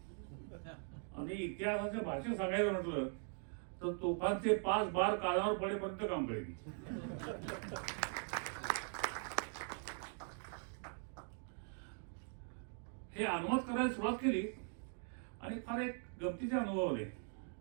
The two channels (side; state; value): left; silent; 50 dB below the other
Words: आणि इतिहासाच्या भाषेत सांगायचं म्हटलं तर तोफांचे 5 बार कानावर पडेपर्यंत काम करेन. हे अनुवाद करायला सुरुवात केली आणि फार एक गमतीचे अनुभव आले.